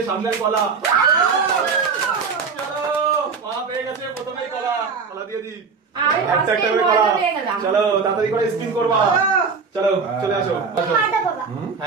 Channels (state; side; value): quieter; left; 5.2 dB